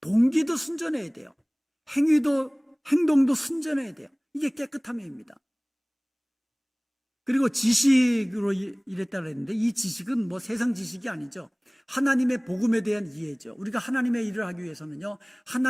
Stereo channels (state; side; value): identical; both; correlation 1.00